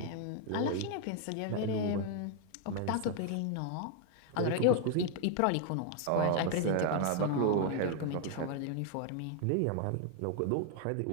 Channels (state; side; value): different; both; correlation 0.00